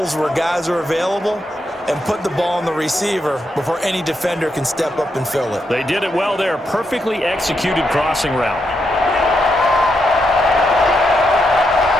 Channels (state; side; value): normal; both; correlation 0.82